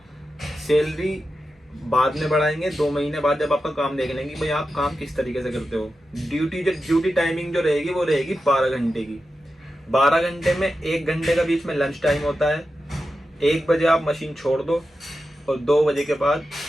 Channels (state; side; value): normal; both; correlation 0.91